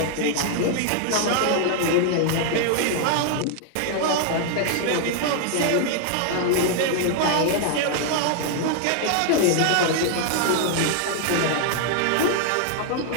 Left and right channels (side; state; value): both; different; correlation 0.00